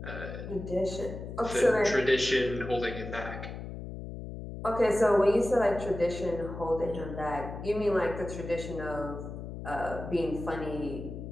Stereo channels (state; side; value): noise; left; hum, 9 dB below the sound